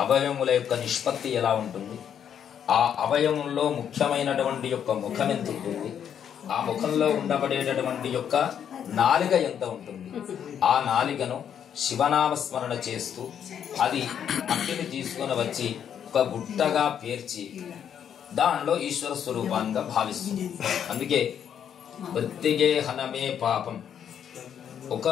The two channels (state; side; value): quieter; right; 8.7 dB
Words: అవయముల యొక్క నిష్పత్తి ఎలా ఉంటుంది, ఆ అవయవంలో ముఖ్యమైనటువంటి యొక్క ముఖం ఎంత ఉంటుంది, ఆ ముఖంలో ఉండబడేటటువంటి యొక్క నాలిక ఎంత ఉంటుంది, ఆ నాలికను శివనామస్మరణ చేస్తూ అది మట్టిని తీసుకొని వచ్చి ఒక గుట్టగా పేర్చి దానిలో ఈశ్వర స్వరూపాన్ని భావిస్తుంది. అందుకే మృత్తిగే హనమే పాపం.